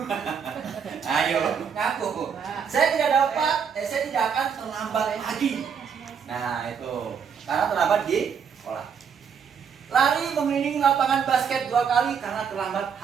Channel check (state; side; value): quieter; left; 6.9 dB